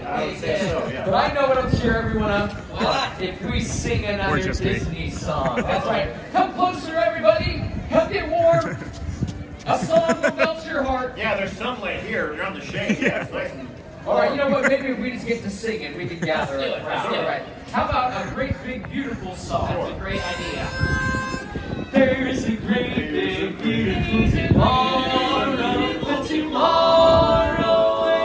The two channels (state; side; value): identical; both; correlation 1.00